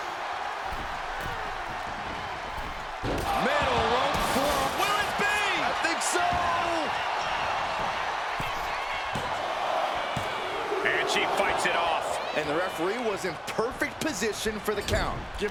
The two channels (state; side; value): identical; both; correlation 1.00